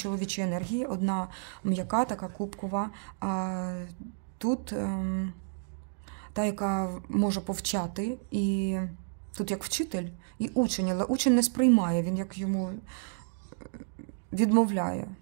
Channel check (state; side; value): silent; left; digital silence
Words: енергії, одна м'яка, така кубкова, а тут та, яка може повчати, і тут як вчитель і учень, але учень не сприймає, він як йому відмовляє.